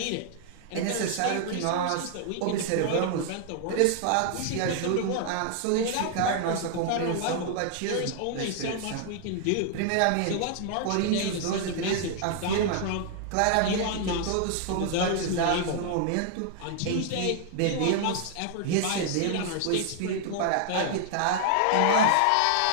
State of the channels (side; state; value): both; different; correlation 0.00